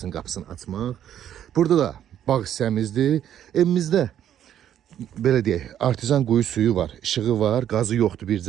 qapısını açmaq. Burada da bağ hissəmizdir. Evimizdə belə deyək, artizan quyu suyu var, işığı var, qazı yoxdur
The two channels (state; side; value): quieter; left; 10.5 dB